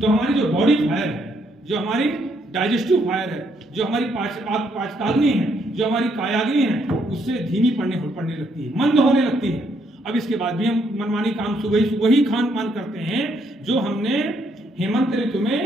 हमारी जो बॉडी फायर है, जो हमारी डाइजेस्टिव फायर है, जो हमारी पाचकाग्नि है, जो हमारी कायाग्नि है, उससे धीमी पड़ने लगती है, मंद होने लगती है। अब इसके बाद भी हम मनमानी काम सुबह ही खान पान करते हैं जो हमने हेमंत ऋतु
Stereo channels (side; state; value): both; normal; correlation 0.72